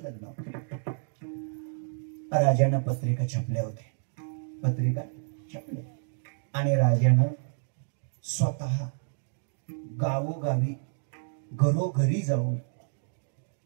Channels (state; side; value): silent; left; digital silence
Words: लग्न होतं. राजानं पत्रिका छापल्या होत्या, पत्रिका छापल्या, आणि राजानं स्वतः गावोगावी घरोघरी जाऊन